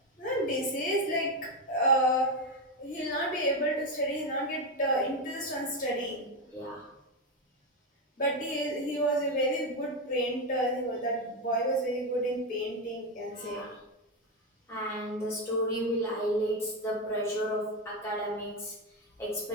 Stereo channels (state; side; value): normal; both; correlation 0.11